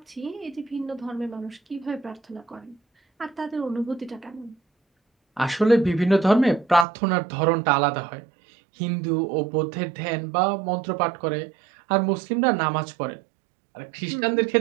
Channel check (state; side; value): drops out; left; at 6.9 s